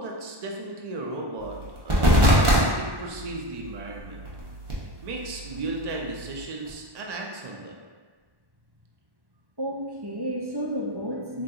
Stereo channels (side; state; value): left; late; 1.1 ms